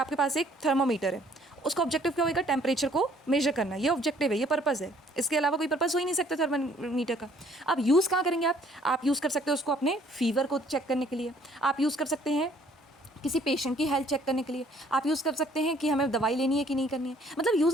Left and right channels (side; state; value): both; normal; correlation 0.60